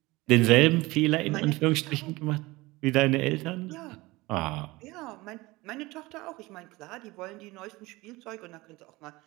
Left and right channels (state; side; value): quieter; left; 21.3 dB